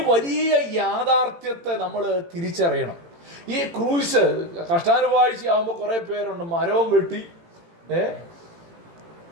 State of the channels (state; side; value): late; left; 18 ms